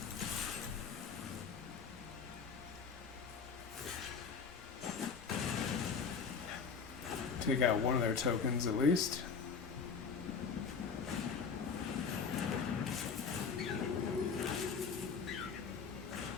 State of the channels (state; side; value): quieter; right; 5.7 dB